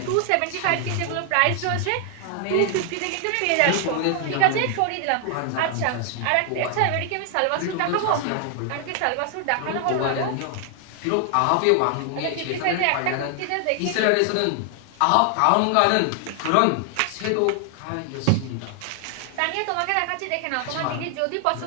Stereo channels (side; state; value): both; different; correlation 0.00